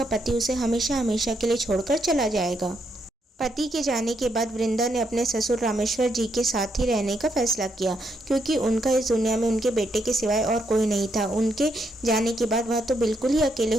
पति उसे हमेशा हमेशा के लिए छोड़कर चला जाएगा। पति के जाने के बाद वृंदा ने अपने ससुर रामेश्वर जी के साथ ही रहने का फैसला किया, क्योंकि उनका इस दुनिया में उनके बेटे के सिवाय और कोई नहीं था। उनके जाने के बाद वह तो बिल्कुल ही अकेले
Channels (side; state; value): both; normal; correlation 0.77